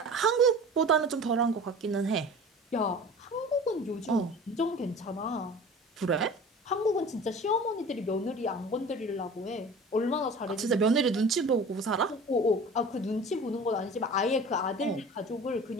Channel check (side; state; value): both; normal; correlation 0.40